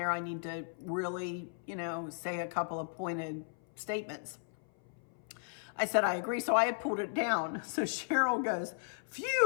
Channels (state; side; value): silent; right; 54 dB below the other